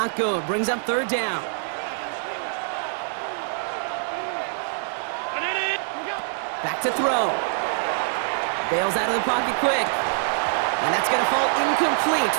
good. Brings up 3rd down. Back to throw. Bails out of the pocket quick. And that's going to fall incomplete.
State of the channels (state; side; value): silent; left; 62 dB below the other